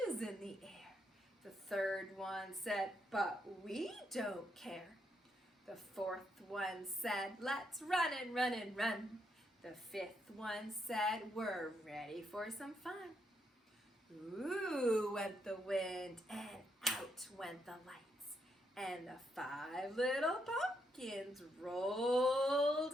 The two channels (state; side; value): normal; both; correlation 0.78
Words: in the air." The third one said, "But we don't care." The fourth one said, "Let's run and run and run." The fifth one said, "We're ready for some fun." Ooh, went the wind, and out went the lights, and the 5 little pumpkins rolled